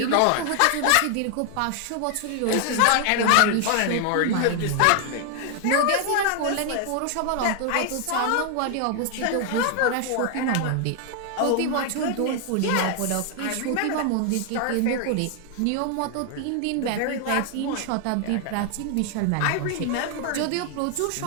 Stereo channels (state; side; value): different; both; correlation 0.00